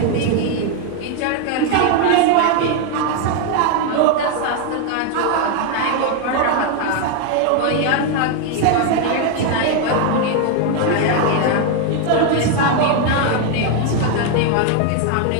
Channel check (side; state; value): both; different; correlation 0.01